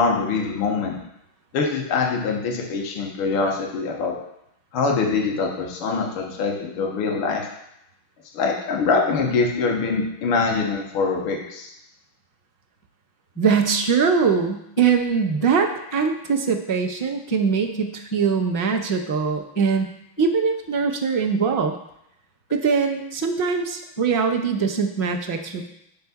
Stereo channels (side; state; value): right; late; 6.1 ms